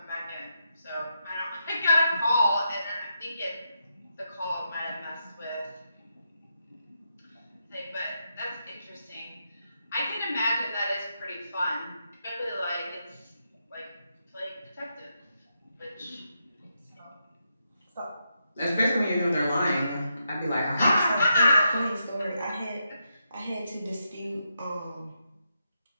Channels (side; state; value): both; inverted; correlation -0.83